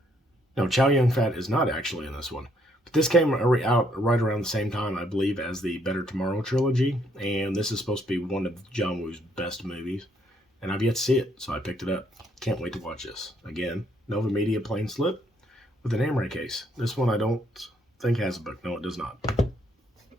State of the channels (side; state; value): both; normal; correlation 0.70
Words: No, Chow Yun-fat is not actually in this one. But this came out right around the same time, I believe, as the Better Tomorrow trilogy, and this is supposed to be one of John Woo's best movies, and I've yet to see it, so I picked it up. Can't wait to watch this. Again, Nova Media plain slip with an Amray case. This one I don't think has a book. No, it does not.